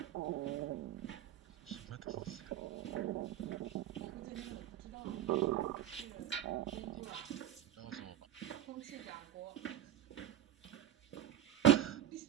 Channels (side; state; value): left; quieter; 11.2 dB